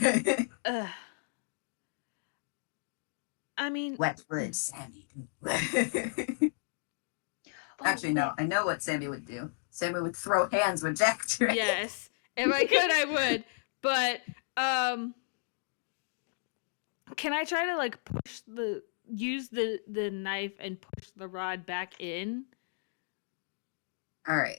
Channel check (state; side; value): silent; right; digital silence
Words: I mean, wet wood, Sammy. Actually, no. I know what Sammy would do. Sammy would throw hands with Jacktrick. Yes, if I could, I would. But can I try to like use the knife and push the rod back in? All